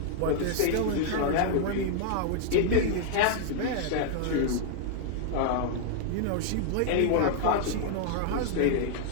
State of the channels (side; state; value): both; different; correlation -0.01